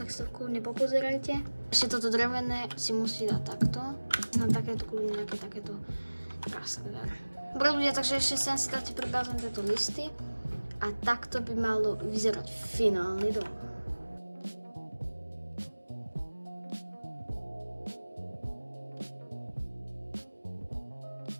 si to kľudne popozerajte. Ešte toto drevené si musí dať takto. Na takéto kľudne nejaké takéto praskové. Dobre ľudia, takže ešte sem si dáte pribázom tieto listy. A takto by malo vyzerať finálny dom.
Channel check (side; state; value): both; inverted; correlation -1.00